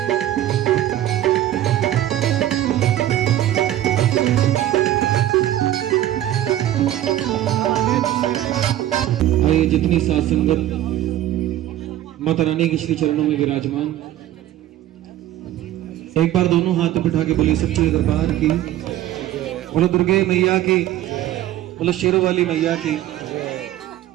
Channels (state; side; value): quieter; left; 13.1 dB